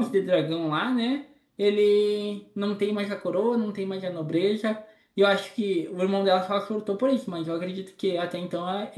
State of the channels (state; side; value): identical; both; correlation 1.00